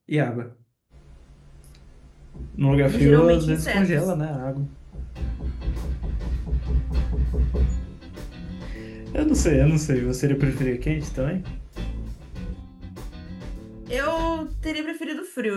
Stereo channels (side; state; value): both; identical; correlation 1.00